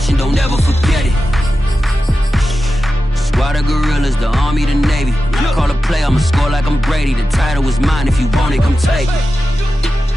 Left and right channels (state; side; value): normal; both; correlation 0.92